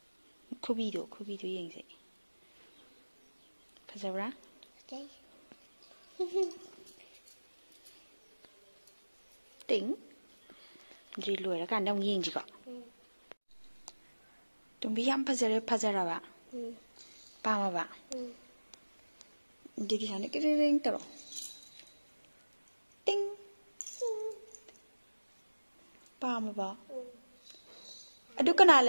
Kubido yengse. Fazabra? Okay. Ting. Drilu era kan dong yeng jiko. Tumbi yam fazara ba. Pama ba. Jadi sana kering tero. Ting. Pama ba. Adu kana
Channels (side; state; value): both; inverted; correlation -1.00